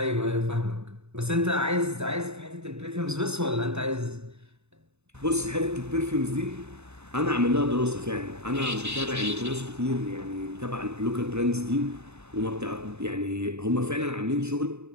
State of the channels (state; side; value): late; left; 0.81 ms